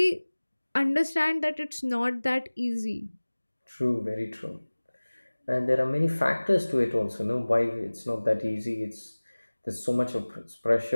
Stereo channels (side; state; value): both; inverted; correlation -1.00